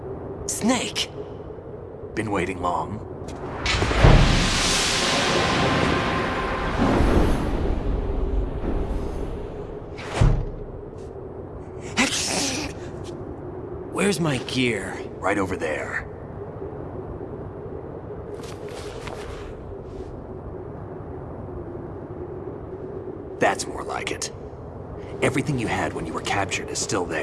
Snake! Been waiting long? Where's my gear? Right over there. That's more like it. Everything you had when you were captured is still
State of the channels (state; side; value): identical; both; correlation 1.00